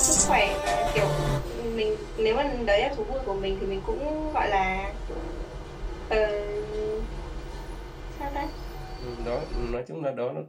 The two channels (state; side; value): identical; both; correlation 1.00